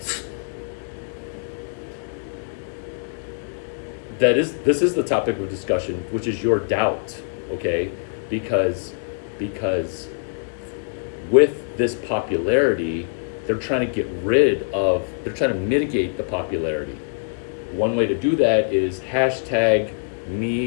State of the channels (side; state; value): right; silent; digital silence